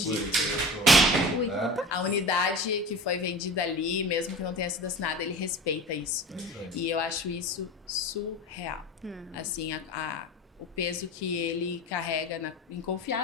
Ui, Né? A unidade que foi vendida ali, mesmo que não tenha sido assinada, ele respeita isso. E eu acho isso surreal. Assim, o peso que ele carrega em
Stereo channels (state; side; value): normal; both; correlation 0.34